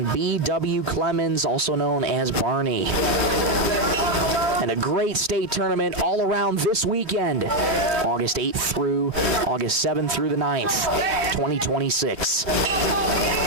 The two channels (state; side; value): late; left; 2.9 ms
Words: B.W. Clemens, also known as Barney. And a great state tournament all around this weekend. August 8th through August 7th through the 9th, 2026.